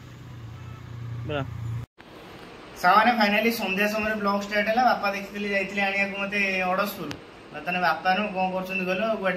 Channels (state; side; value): identical; both; correlation 1.00